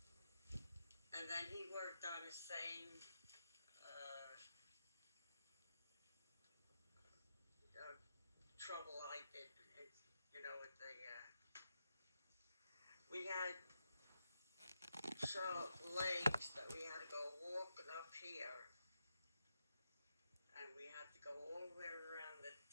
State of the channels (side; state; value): both; inverted; correlation -0.86